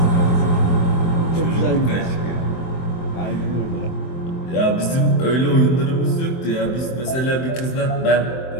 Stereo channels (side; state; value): right; late; 23 ms